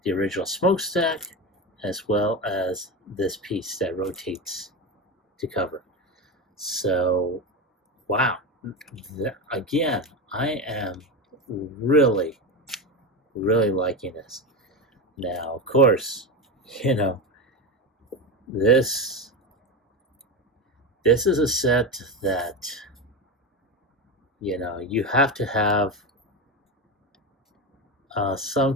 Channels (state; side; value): normal; both; correlation 0.18